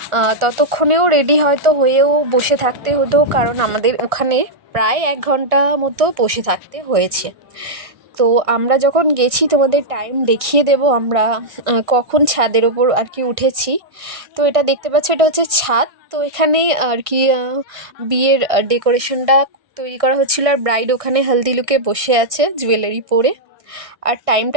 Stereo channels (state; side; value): late; left; 1.6 ms